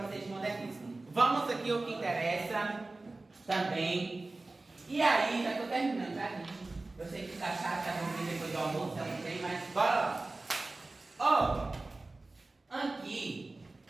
vocês de modernismo. Vamos aqui o que interessa também. E aí, já estou terminando, tá, gente? Eu sei que tá chato, tá vamos vir depois do almoço, eu não sei, mas bora lá. Aqui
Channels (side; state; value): left; quieter; 3.2 dB